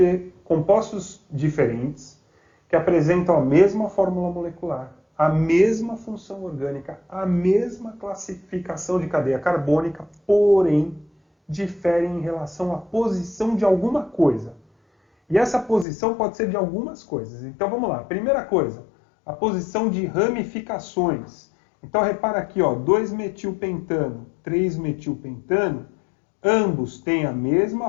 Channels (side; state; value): right; drops out; at 15.9 s